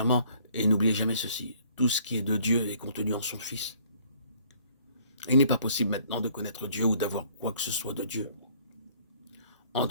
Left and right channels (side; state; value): both; inverted; correlation -0.60